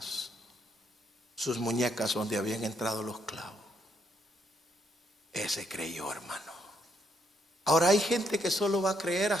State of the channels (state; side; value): normal; both; correlation 0.74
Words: sus muñecas donde habían entrado los clavos, ese creyó, hermano. Ahora hay gente que solo va a creer